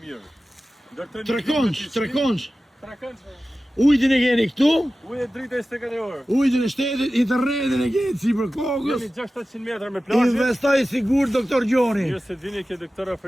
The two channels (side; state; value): both; normal; correlation 0.95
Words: mirë. Trekonç. Trekonç. Ujtin e keni këtu, Ujë drita 24 orë. ujtin e shtetit, internetin e keni si për kokës. Jemi 600 metra me plazhe. Investoj sigur, doktor Gjoni. Mirë se vini ke doktor